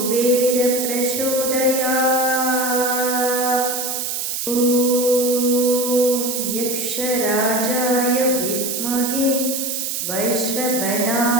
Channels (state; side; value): noise; right; hiss, 2 dB below the sound